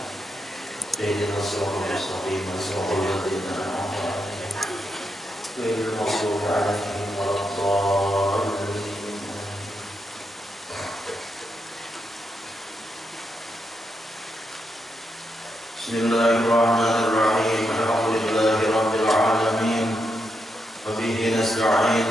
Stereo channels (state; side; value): normal; both; correlation 0.83